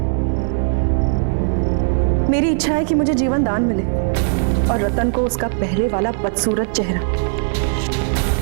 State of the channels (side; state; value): left; silent; digital silence